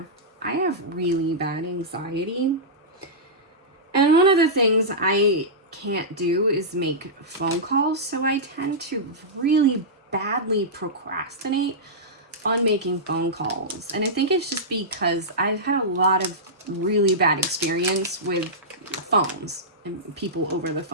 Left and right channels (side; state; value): both; normal; correlation -0.14